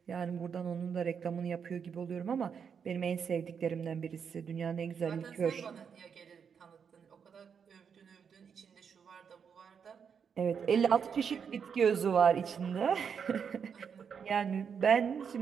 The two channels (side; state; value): left; quieter; 6.9 dB